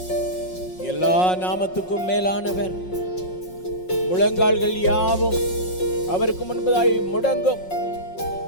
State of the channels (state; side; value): late; right; 5.5 ms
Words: எல்லா நாமத்துக்கும் மேலானவர், முழங்கால்கள் யாவும் அவருக்கு முன்பதாய் முடங்கும்.